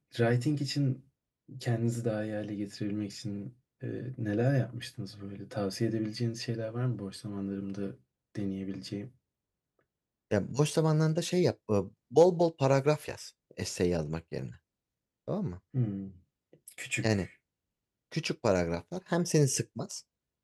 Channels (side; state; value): both; identical; correlation 1.00